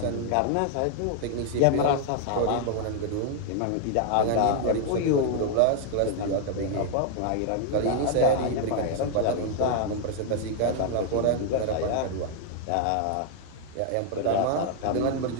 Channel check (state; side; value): different; both; correlation 0.00